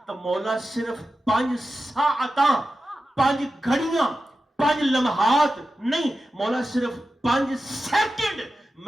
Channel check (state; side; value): normal; both; correlation 0.93